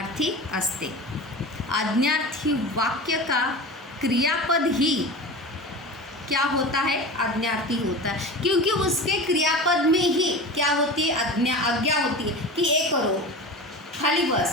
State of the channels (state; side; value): normal; both; correlation 0.31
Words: असते। आज्ञार्थी वाक्य का क्रियापद ही क्या होता है, आज्ञार्थी होता है, क्योंकि उसके क्रियापद में ही क्या होती है, आज्ञा होती है कि ये करो, खाली